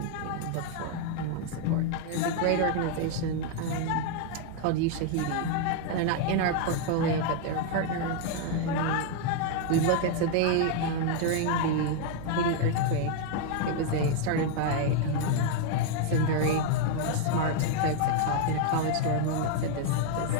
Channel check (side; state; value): both; different; correlation 0.00